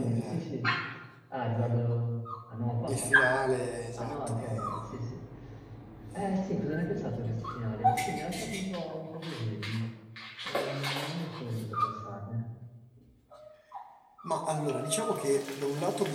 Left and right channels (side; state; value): both; identical; correlation 1.00